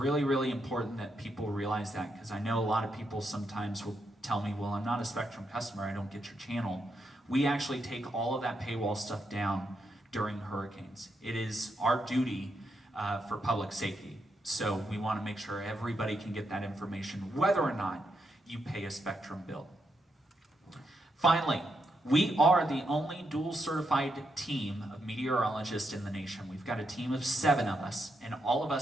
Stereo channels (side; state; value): both; normal; correlation 0.81